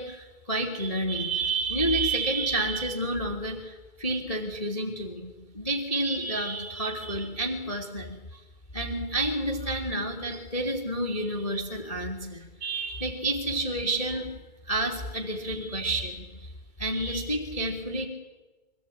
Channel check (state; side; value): late; right; 2.3 ms